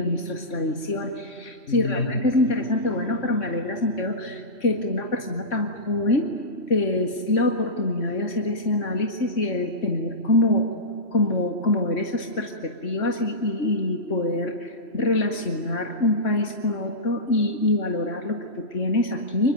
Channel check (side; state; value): right; late; 3.6 ms